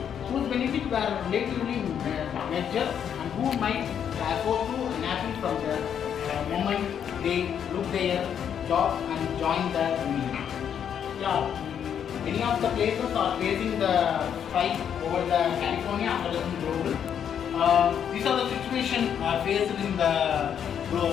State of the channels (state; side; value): quieter; right; 8.5 dB